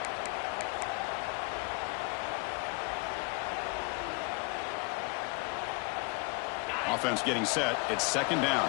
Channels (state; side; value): quieter; right; 29.7 dB